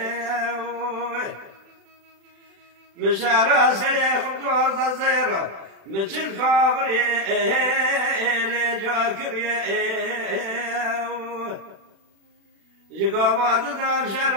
مشعر سليم خبطوة صغيرة مثل خابري لجاكريه جقابات دام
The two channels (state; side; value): late; left; 36 ms